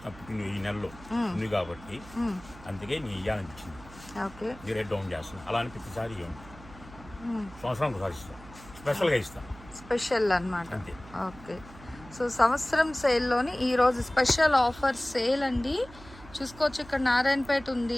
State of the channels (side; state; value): right; noise; hum, 19 dB below the sound